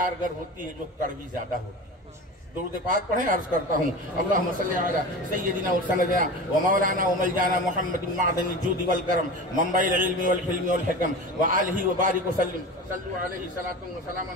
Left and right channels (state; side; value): normal; both; correlation 0.30